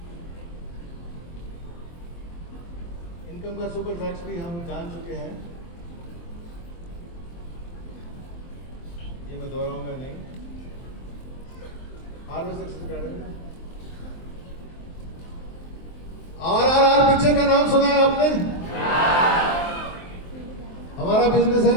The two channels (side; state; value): right; late; 23 ms